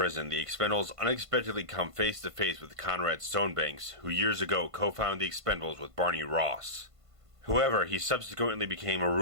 the Expendables unexpectedly come face to face with Conrad Stonebanks, who years ago co-founded the Expendables with Barney Ross. However, he subsequently became a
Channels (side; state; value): left; late; 1.5 ms